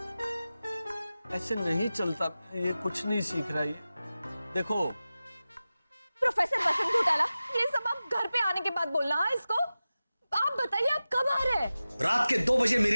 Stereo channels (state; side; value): inverted; both; correlation -0.95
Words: ऐसे नहीं चलता, ये कुछ नहीं सीख रहा। ये देखो प्रोफेसर वसंत घोटाला, ये सब आप घर पे आने के बाद बोलना। हाँ इसको आप बताइए, आप कब आ रहे हैं? रात के 2 बजे